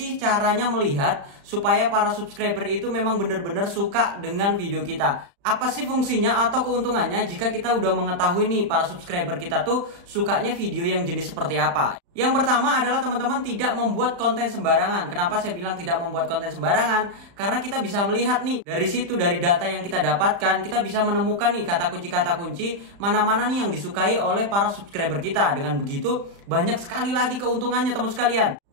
caranya melihat supaya para subscriber itu memang benar-benar suka dengan video kita? Apa sih fungsinya atau keuntungannya jika kita udah mengetahui nih para subscriber kita tuh sukanya video yang jenis seperti apa? Yang pertama adalah teman-teman tidak membuat konten sembarangan. Kenapa saya bilang tidak membuat konten sembarangan? Karena kita bisa melihat nih dari situ, dari data yang kita dapatkan, kita bisa menemukan nih kata kunci mana-mana nih yang disukai oleh para subscriber kita. Dengan begitu banyak sekali lagi keuntungannya teman sekalian.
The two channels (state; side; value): late; left; 35 ms